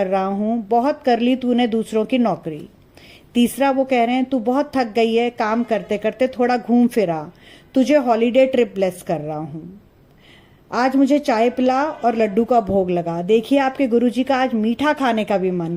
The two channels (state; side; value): identical; both; correlation 1.00